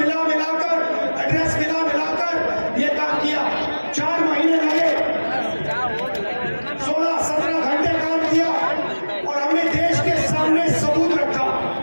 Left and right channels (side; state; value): both; inverted; correlation -1.00